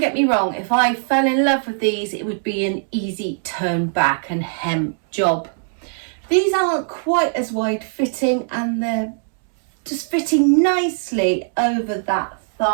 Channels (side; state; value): left; silent; 66 dB below the other